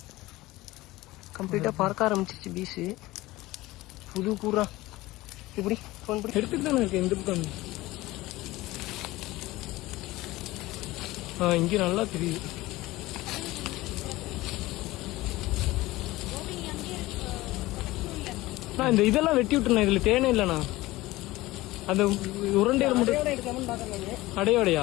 கம்ப்ளீட்டாக பறக்க ஆரம்பிச்சிச்சு பீஸு. புது கூறா இப்படி ஃபோன் பண்ணி எடுத்துட்டு தானே இருக்கு. எந்த பக்கம் இங்கே நல்லா தெரியுது. நான் இந்த இதெல்லாம் வெட்டி விட்டுருண்ணா. இதில் தேனே இல்லைண்ணா. அந்த உருண்டையில் மட்டும்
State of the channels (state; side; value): quieter; right; 18.8 dB